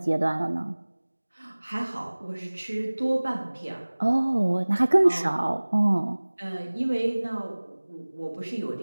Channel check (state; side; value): inverted; both; correlation -1.00